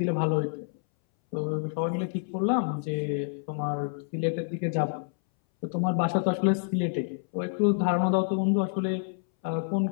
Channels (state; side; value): silent; right; 59 dB below the other